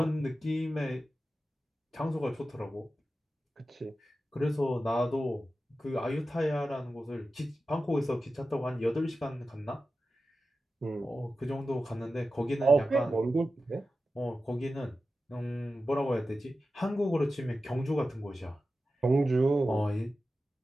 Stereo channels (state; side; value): normal; both; correlation 0.93